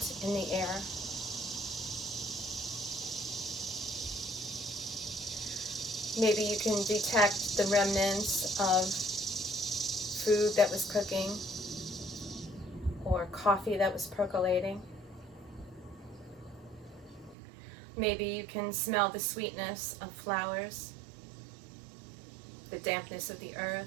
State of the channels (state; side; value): drops out; left; at 17.4 s